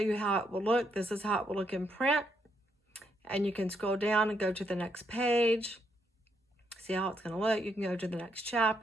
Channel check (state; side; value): normal; both; correlation 0.76